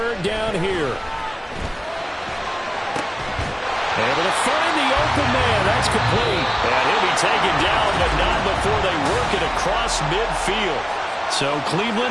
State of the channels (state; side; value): identical; both; correlation 1.00